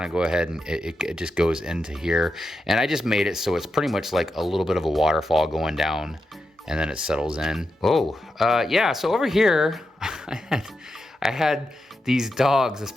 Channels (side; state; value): both; normal; correlation 0.87